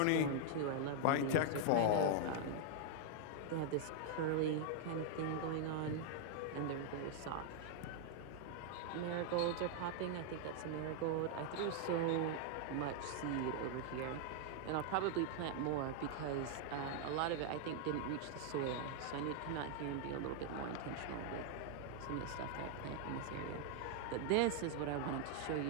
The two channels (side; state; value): both; different; correlation 0.00